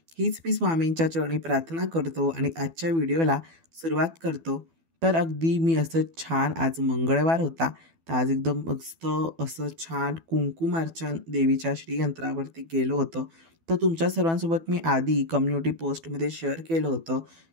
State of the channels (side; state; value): left; late; 12 ms